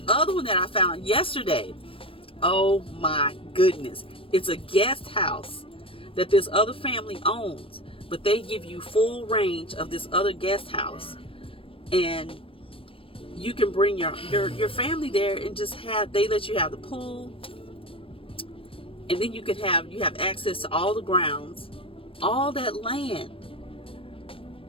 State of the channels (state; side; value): late; right; 0.26 ms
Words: other one that I found yesterday. Oh my goodness! It's a guest house that this other family owns, but they give you full range of this other guest house, and you can bring your family there and just they let you have the pool, and then you have access to all the grounds, all that land.